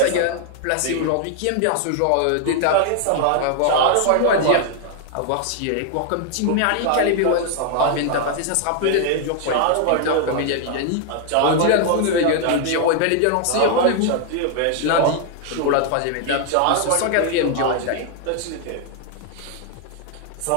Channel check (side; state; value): both; different; correlation 0.00